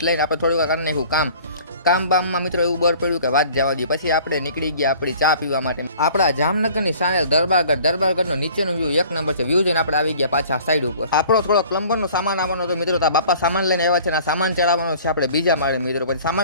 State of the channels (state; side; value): inverted; both; correlation -0.50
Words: લઈને આપણે થોડુંક કરી નાખ્યું કામ બામમાં મિત્રો એવું બર પડ્યું કે વાત જવા દઈએ। પછી આપણે નીકળી ગયા આપણી ચા પીવા માટે આપણા જામનગરની સાણેલ દરબારગઢનો નીચેનો વ્યૂ એક નંબર છે। વ્યૂ જોઈને આપણે આવી ગયા પાછા સાઈડ ઉપર। આપણો થોડો પ્લમ્બરનો સામાન આવવાનો હતો મિત્રો। તો બાપા સામાન લઈને આવ્યા છે ને સામાન ચડાવવાનો છે આપણે બીજા માળે મિત્રો। પછી